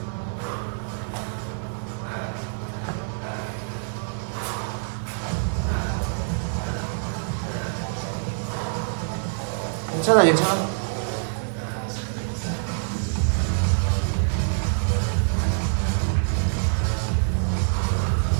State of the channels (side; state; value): left; silent; digital silence